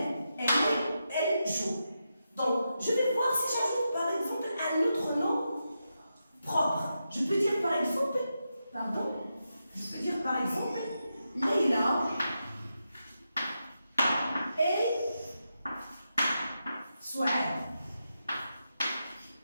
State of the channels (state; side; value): inverted; both; correlation -0.87